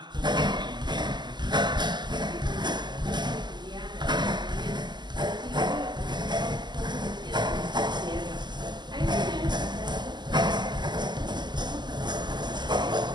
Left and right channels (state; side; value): late; left; 0.21 ms